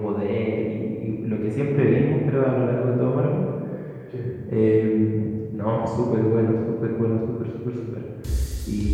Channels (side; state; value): both; identical; correlation 1.00